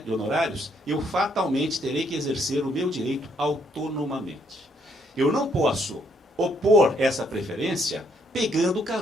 de honorários, eu fatalmente terei que exercer o meu direito autonomamente. Eu não posso opor essa preferência pegando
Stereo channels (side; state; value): both; normal; correlation 0.70